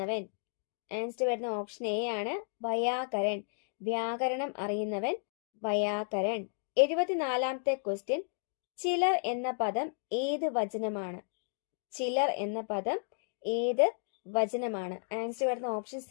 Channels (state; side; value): silent; right; digital silence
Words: ആൻസർ വരുന്ന ഓപ്ഷൻ എ ആണ്, വയാകരൻ. വ്യാകരണം അറിയുന്നവൻ വയാകരൻ. 74ാമത്തെ ക്വസ്റ്റ്യൻ, ചിലർ എന്ന പദം ഏത് വചനമാണ്? ചിലർ എന്ന പദം ഏത് വചനമാണ്? ആൻസർ വരുന്ന ഓപ്ഷൻ